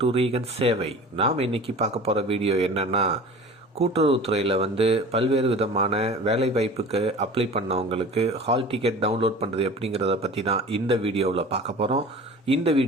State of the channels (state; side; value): normal; both; correlation 0.39